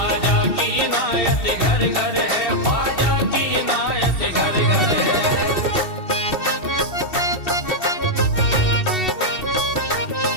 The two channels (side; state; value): right; late; 2.7 ms